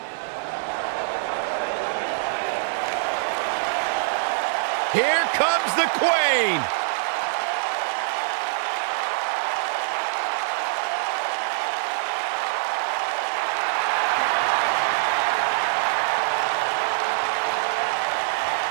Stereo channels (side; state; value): left; silent; digital silence